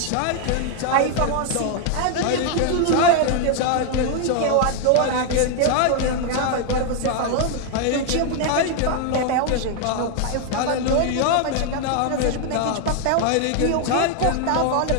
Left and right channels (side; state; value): both; different; correlation 0.00